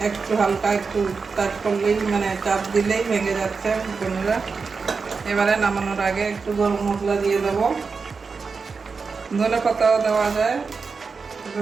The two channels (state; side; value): quieter; left; 4.9 dB